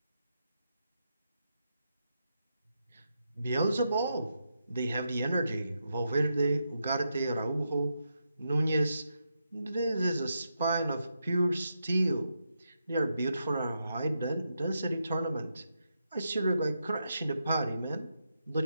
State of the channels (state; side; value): inverted; both; correlation -0.84